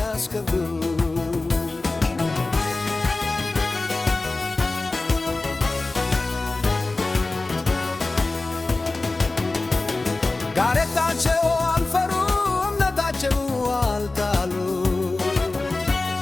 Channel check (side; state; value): right; quieter; 3.3 dB